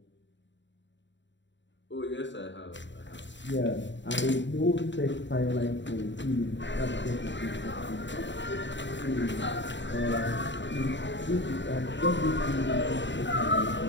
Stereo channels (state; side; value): late; right; 0.53 ms